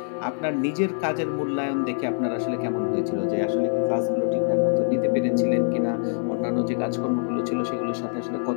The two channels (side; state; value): right; silent; digital silence